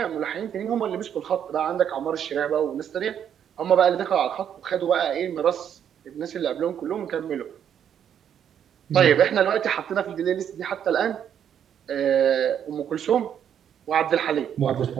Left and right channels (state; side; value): quieter; left; 9.0 dB